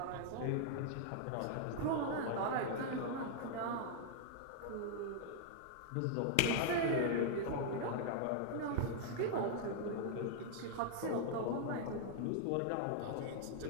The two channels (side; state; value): both; different; correlation -0.01